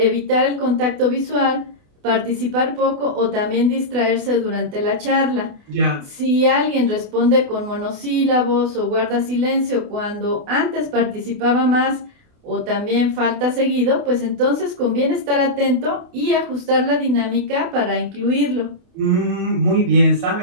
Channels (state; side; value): late; left; 28 ms